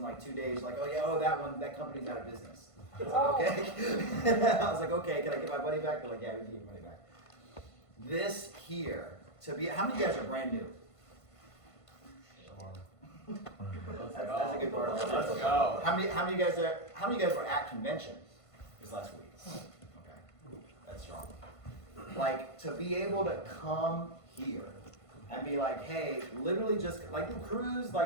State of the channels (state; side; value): late; right; 1.5 ms